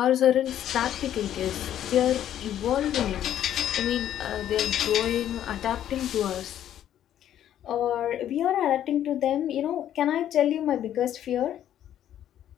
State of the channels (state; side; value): quieter; right; 11.1 dB